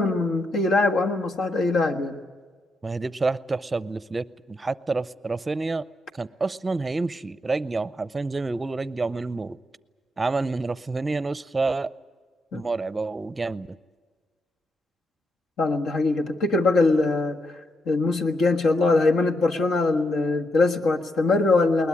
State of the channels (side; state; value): both; normal; correlation 0.81